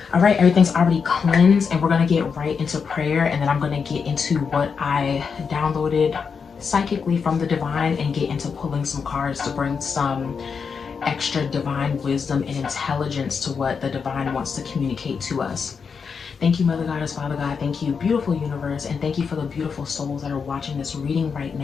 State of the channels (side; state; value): right; quieter; 5.9 dB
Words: All right, everything's already cleansed and we're gonna get right into prayer, and then I'm gonna get into what I downloaded psychically from the divine and get into pulling some cards to bring some extra divine wisdom and intelligence to what the divine wants to communicate to us. Thank you, Mother Goddess, Father God. Thank you, beautiful universe, and thank you for the beautiful souls that are watching this reading right